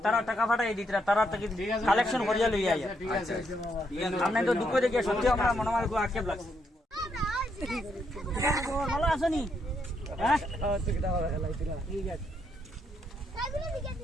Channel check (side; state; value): both; normal; correlation 0.76